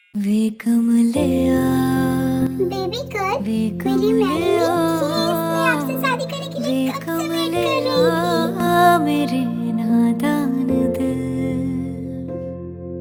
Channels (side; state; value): both; identical; correlation 1.00